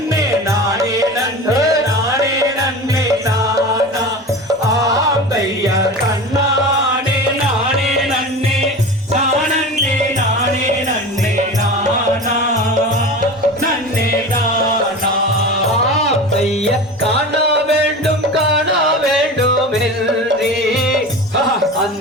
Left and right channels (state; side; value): normal; both; correlation 0.31